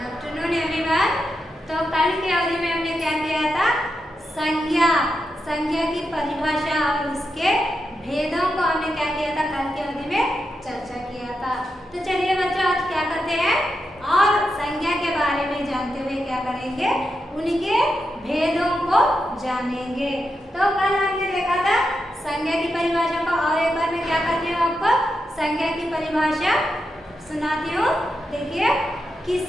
afternoon everyone. तो कल की अवधि में हमने क्या किया था? संज्ञा संज्ञा की परिभाषा और उसके भेदों को हमने क्या किया था? कल की अवधि में चर्चा किया था। तो चलिए बच्चों, आज क्या करते हैं और संज्ञा के बारे में जानते हुए क्या करेंगे, उनके भेदों को जानेंगे। तो कल हमने देखा था संज्ञा की परिभाषा को, और एक बार मैं क्या करती हूँ आपको संज्ञा की परिभाषा सुनाती हूँ। देखिए,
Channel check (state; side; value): normal; both; correlation 0.86